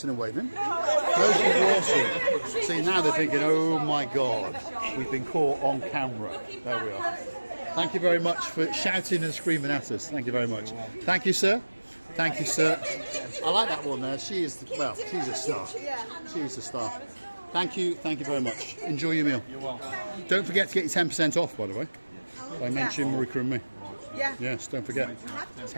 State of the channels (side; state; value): both; inverted; correlation -1.00